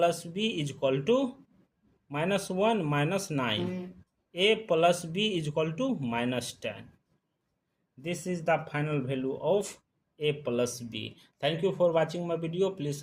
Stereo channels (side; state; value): both; identical; correlation 1.00